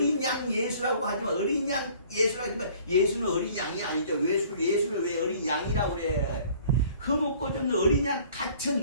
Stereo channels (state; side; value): inverted; both; correlation -0.53